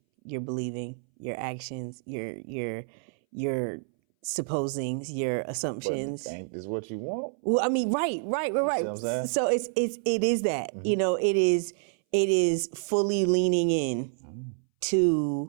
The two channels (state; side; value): silent; left; 59 dB below the other